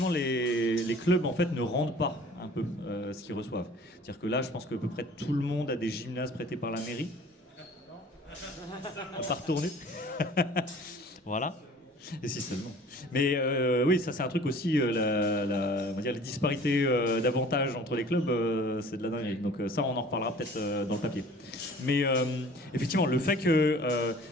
les clubs en fait ne rendent pas un peu ce qu'ils reçoivent. C'est-à-dire que là, je pense qu'à peu près tout le monde a des gymnases prêtés par la mairie. À part tourner. Voilà. Et si seulement. Mais oui, ça c'est un truc aussi, on va dire les disparités d'avantages entre les clubs, c'est de la dinguerie. Donc ça, on en reparlera peut-être dans le papier. Mais effectivement, le fait que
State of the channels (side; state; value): both; normal; correlation 0.48